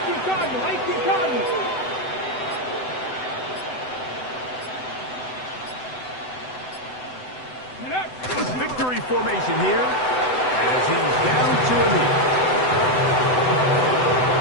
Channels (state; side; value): late; right; 7.9 ms